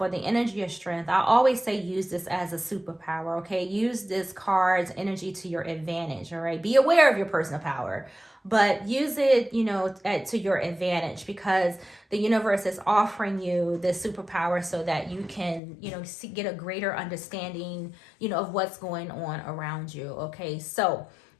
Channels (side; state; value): right; drops out; at 15.6 s